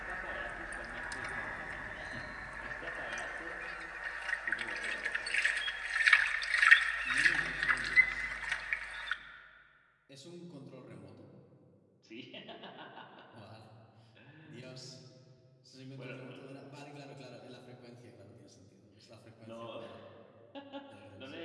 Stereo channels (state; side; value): identical; both; correlation 1.00